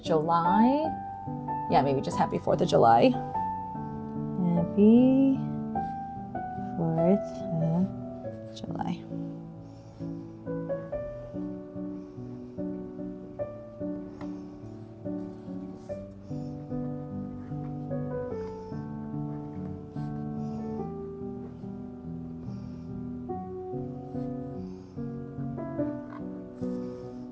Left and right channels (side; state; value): both; identical; correlation 1.00